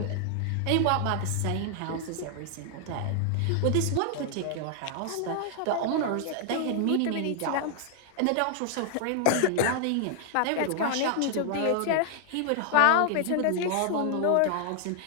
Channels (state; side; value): different; both; correlation 0.00